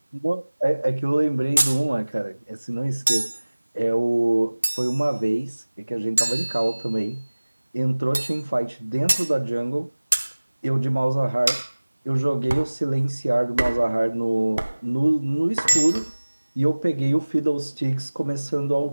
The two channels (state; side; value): inverted; both; correlation -1.00